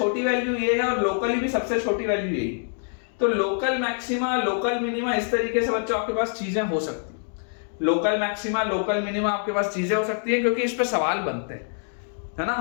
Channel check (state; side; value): silent; right; 60 dB below the other